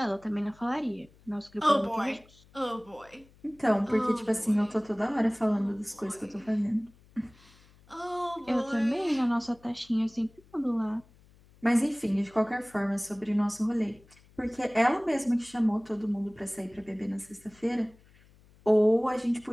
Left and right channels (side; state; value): left; noise; hum, 28 dB below the sound